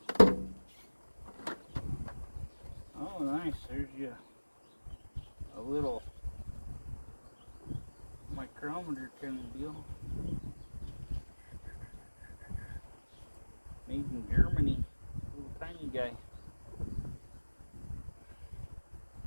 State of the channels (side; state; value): both; inverted; correlation -1.00